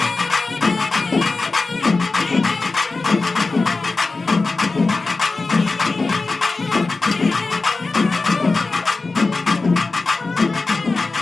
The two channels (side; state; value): right; quieter; 3.7 dB